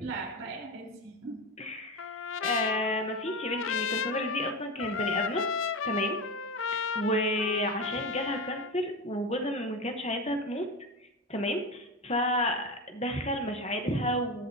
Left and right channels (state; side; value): normal; both; correlation 0.21